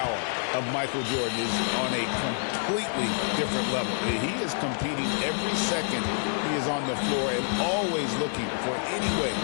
of Michael Jordan is on a completely different level. He is competing every second he is on the floor and always looking for any way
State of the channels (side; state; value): right; silent; 60 dB below the other